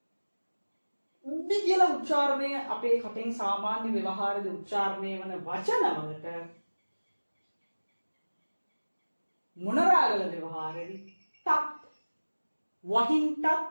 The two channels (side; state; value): both; inverted; correlation -1.00